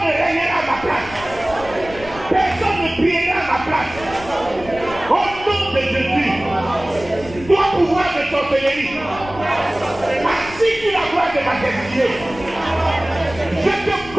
ne régnera à ma place. Personne ne priera à ma place. Au nom de Jésus, toi pouvoir de sorcellerie, assis sur la gloire de ma destinée, je te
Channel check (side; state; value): left; noise; rumble, 16 dB below the sound